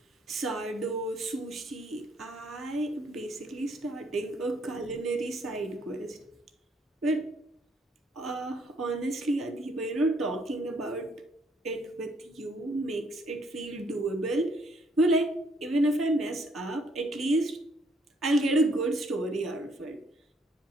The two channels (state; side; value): normal; both; correlation 0.67